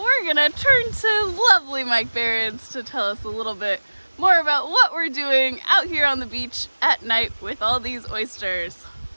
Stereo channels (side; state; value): both; inverted; correlation -1.00